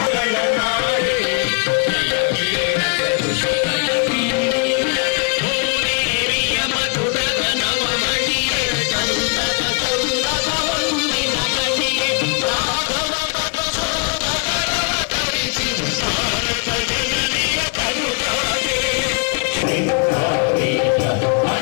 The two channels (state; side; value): quieter; right; 35.5 dB